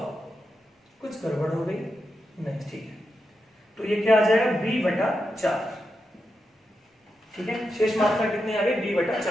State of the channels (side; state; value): both; normal; correlation 0.87